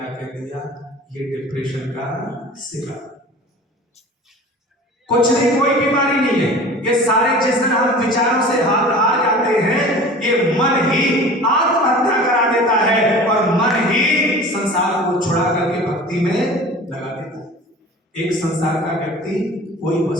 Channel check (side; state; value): both; normal; correlation 0.40